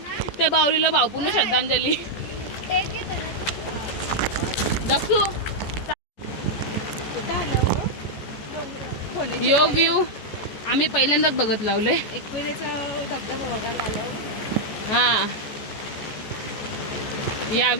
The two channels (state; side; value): late; right; 14 ms